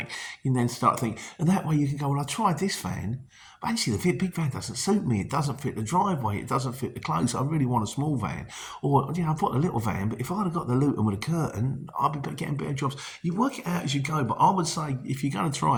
And then start thinking, and that way you can go, well, I tried this van, but actually the big van doesn't suit me. It doesn't fit the driveway. It doesn't fit the clothes. I really want a small van. Or, you know, I've got a little van, but if I'd have got the Luton with a curtain, I'd be getting better jobs. You work it out as you go, but I would say if you're going to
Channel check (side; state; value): both; identical; correlation 1.00